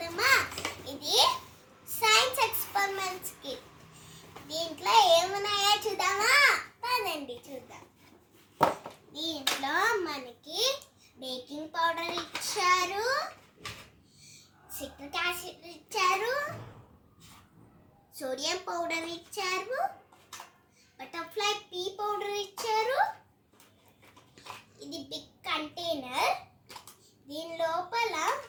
ఇది సైన్స్ ఎక్స్పెరిమెంట్స్ కి. దీంట్లో ఏమున్నాయో చూద్దామా? పదండి చూద్దాం. దీంట్లో మనకి బేకింగ్ పౌడర్ ఇచ్చారు, సిట్రిక్ యాసిడ్ ఇచ్చారు, సోడియం పౌడర్ ఇచ్చారు, బటర్ఫ్లై పీ పౌడర్ ఇచ్చారు. ఇది బిగ్ కంటైనర్. దీని లోపల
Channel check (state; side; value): identical; both; correlation 1.00